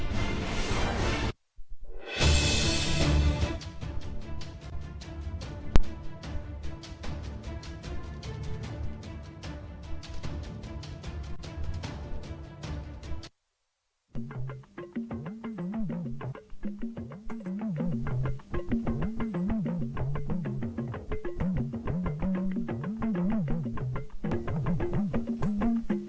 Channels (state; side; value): identical; both; correlation 1.00